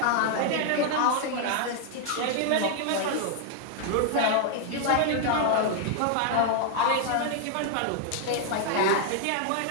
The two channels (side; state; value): both; different; correlation 0.00